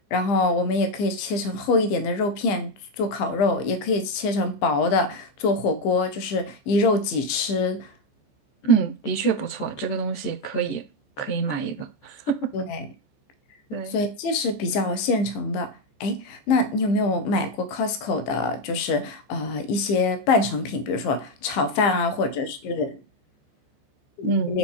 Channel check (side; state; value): right; late; 15 ms